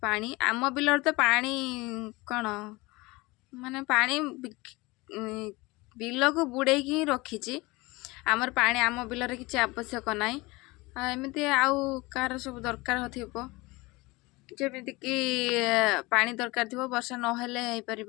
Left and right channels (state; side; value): quieter; right; 22.9 dB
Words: पानी आम बिलर तो पानी कौन माने पानी बिल को बुड़े ही रखी आमर पानी आम बिलर किसी आवश्यक ना एमती आउ कार सब दरकार हो जमीक पानी दरकार थी वर्षा नहेले हो